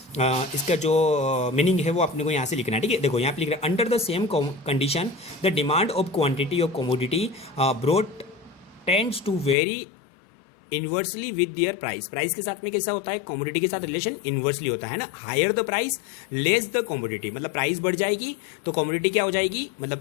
इसका जो मीनिंग है वो अपने को यहाँ से लिखना है, ठीक है। देखो यहाँ पे लिख रहा है, under the same condition the demand of quantity of commodity broad tends to vary inversely with their price. Price के साथ में कैसा होता है, कमोडिटी के साथ रिलेशन इन्वर्सली होता है ना, higher the price less the commodity, मतलब प्राइस बढ़ जाएगी तो कमोडिटी क्या हो जाएगी,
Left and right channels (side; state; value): right; drops out; at 9.6 s